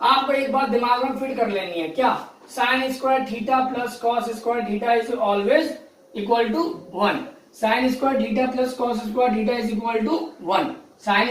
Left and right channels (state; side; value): identical; both; correlation 1.00